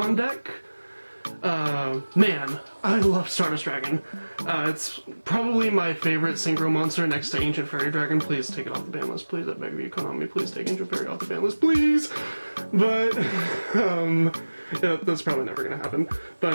deck. Man, I love Stardust Dragon. It's probably my favorite Synchro monster next to Ancient Fairy Dragon. Please take it off the ban list, please. I beg of you, Konami, please take Ancient Fairy off the ban list, please! But, yeah, that's probably never gonna happen.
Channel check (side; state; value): both; inverted; correlation -1.00